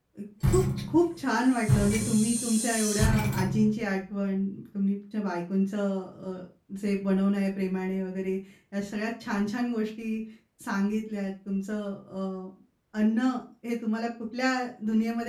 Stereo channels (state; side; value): identical; both; correlation 1.00